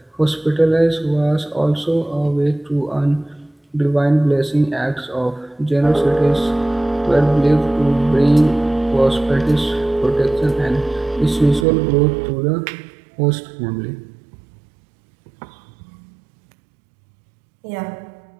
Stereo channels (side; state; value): left; drops out; at 11.7 s